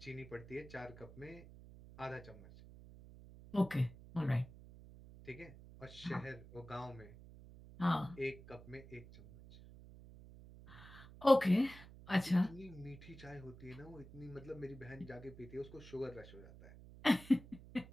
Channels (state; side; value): noise; right; hum, 17 dB below the sound